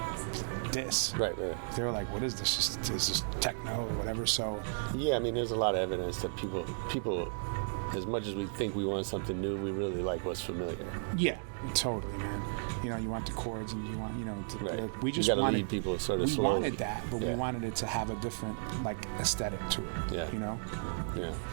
diss. Right. They were like, what is this? Is this techno or whatever? So. Yeah, there's a lot of evidence that people, as much as we think we want something new, we really like what's familiar. Yeah, totally, man. You want the chords, and you want, we just wanted wanted people sort of we slowly. wanted that, but we wanted it to have a different aesthetic to it. Yeah.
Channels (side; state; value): left; silent; digital silence